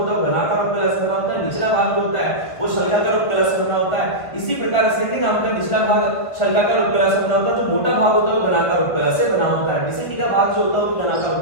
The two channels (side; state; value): right; late; 1.8 ms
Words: है वो घनाकार उपकला से बना होता है, निचला भाग जो होता है वो शल्काकार उपकला से बना होता है। इसी प्रकार असेंडिंग आपका निचला भाग शल्काकार उपकला से बना होता है, जो मोटा भाग होता है वो घनाकार उपकला से बना होता है। डिसेंडिंग का भाग जो होता है वो घनाकार